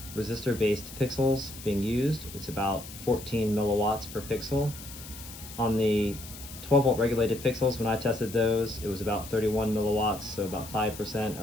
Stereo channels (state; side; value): noise; left; hiss, 14 dB below the sound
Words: resistor-based pixels being used. It's about 14 milliwatts per pixel. On the 12 volt regulated pixels, when I tested those, it was about 31 milliwatts, so about 5%